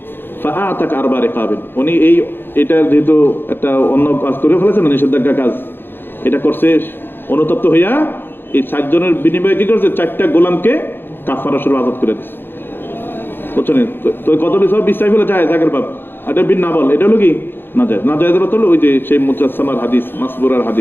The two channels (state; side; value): late; right; 0.10 ms